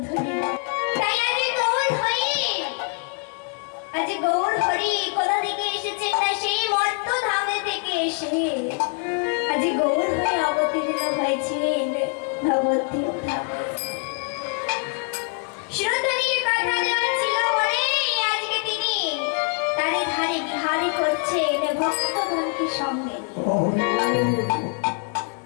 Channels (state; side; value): quieter; right; 39.3 dB